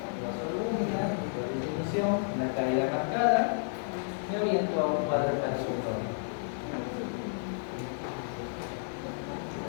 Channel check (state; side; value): silent; right; digital silence